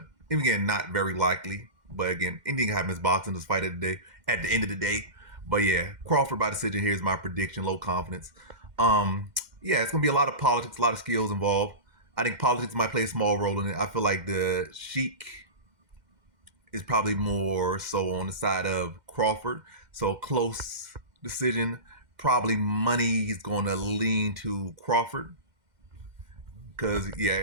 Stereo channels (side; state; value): left; late; 2.1 ms